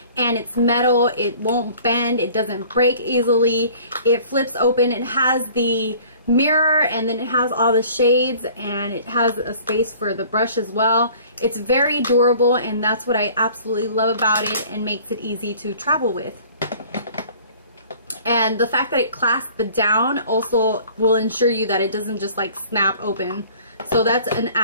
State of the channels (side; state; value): both; inverted; correlation -0.50